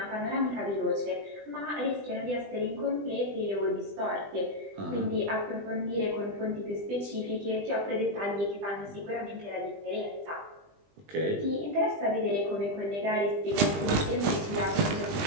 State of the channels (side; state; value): left; late; 20 ms